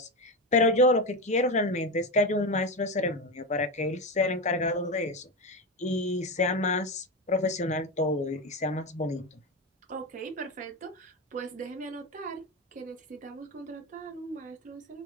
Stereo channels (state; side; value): normal; both; correlation 0.17